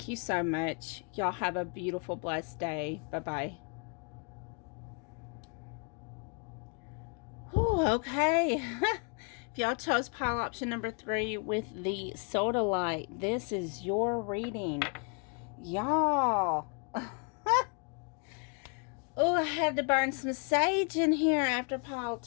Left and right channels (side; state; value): right; quieter; 38.2 dB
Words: you so much. Y'all have a beautiful, blessed day. Bye-bye. Oh, okay. If y'all chose pile option number 3 with the soda light, this is your reading. Y'all. Oh, I had to burn some sage in here after pile